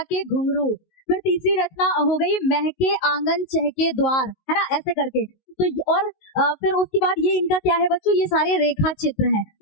के घुंघरू, फिर तीसरी रचना हो गई महके आंगन चहके द्वार, है ना, ऐसे करके। तो और फिर उसके बाद ये इनका क्या है बच्चों, ये सारे रेखा चित्र हैं।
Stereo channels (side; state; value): right; late; 19 ms